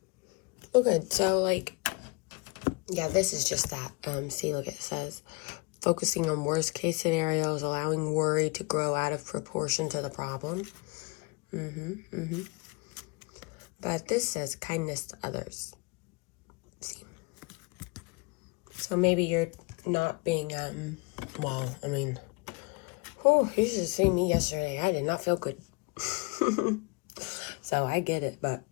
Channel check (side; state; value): right; quieter; 28.3 dB